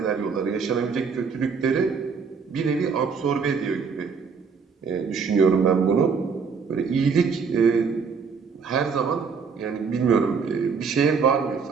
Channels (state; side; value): quieter; left; 5.6 dB